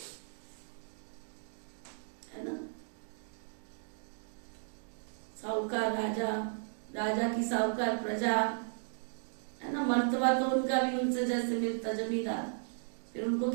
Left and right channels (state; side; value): silent; left; digital silence